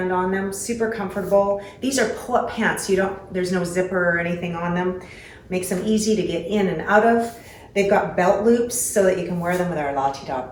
on them, super comfortable. These are pull-up pants. There's no zipper or anything on them. Makes them easy to get in and out of. They've got belt loops so that you can wear them with our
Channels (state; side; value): identical; both; correlation 1.00